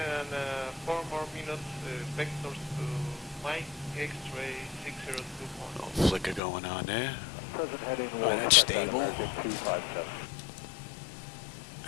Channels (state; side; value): drops out; right; at 6.4 s